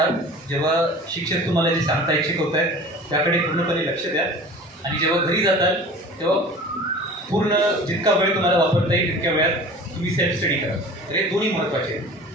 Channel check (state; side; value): normal; both; correlation 0.41